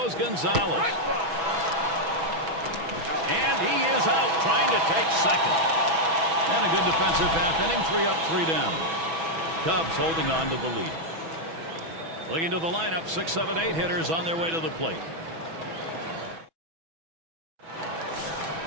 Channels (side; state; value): left; late; 6.1 ms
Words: Gonzalez. And he is out trying to take second. And a good defensive half inning, 3 up, 3 down. Cubs holding on to the lead. Looking to the lineup, 6, 7, 8 hitters on their way to the plate.